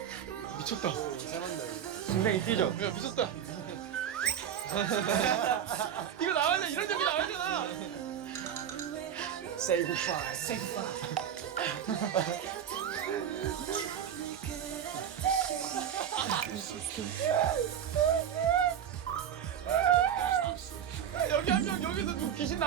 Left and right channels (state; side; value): quieter; left; 9.2 dB